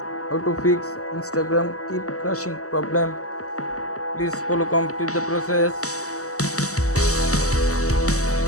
how to fix Instagram keep crashing problem. Please follow complete the process.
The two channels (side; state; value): right; late; 0.66 ms